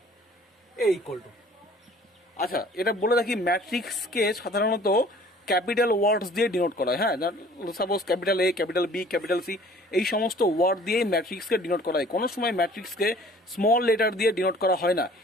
এই ইকুয়াল টু। আচ্ছা, এটা বলে রাখি, ম্যাট্রিক্সকে সাধারণত ক্যাপিটাল ওয়ার্ডস দিয়ে ডিনোট করা হয়। হ্যাঁ, suppose capital A, capital B, capital C, এই সমস্ত ওয়ার্ড দিয়ে ম্যাট্রিক্সকে ডিনোট করা হয়। কোনো সময় ম্যাট্রিক্সকে স্মল লেটার দিয়ে ডিনোট করা হয় না।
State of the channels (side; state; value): both; normal; correlation 0.51